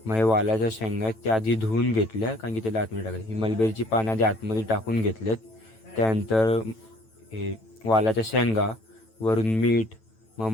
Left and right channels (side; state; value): right; late; 9.1 ms